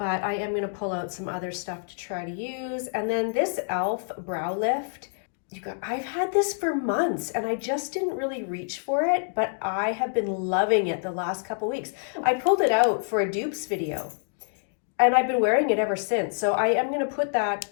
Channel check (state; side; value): silent; right; digital silence